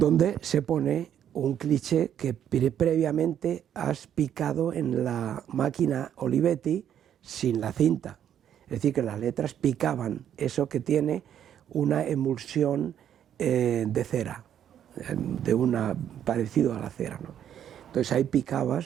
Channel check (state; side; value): quieter; left; 9.8 dB